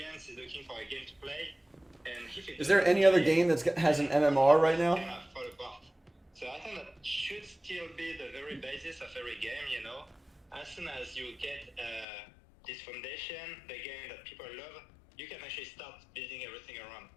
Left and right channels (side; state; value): right; drops out; at 12.1 s